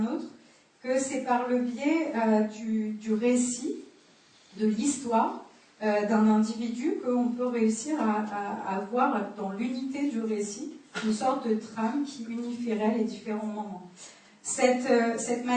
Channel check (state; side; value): identical; both; correlation 1.00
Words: autre, que c'est par le biais du récit, de l'histoire d'un individu qu'on peut réussir à avoir dans l'unité du récit une sorte de trame qui unifierait les différents moments. Cette